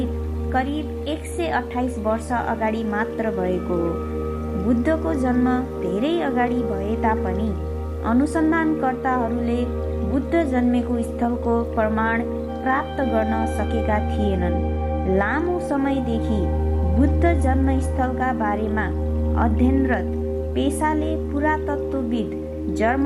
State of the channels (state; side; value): identical; both; correlation 1.00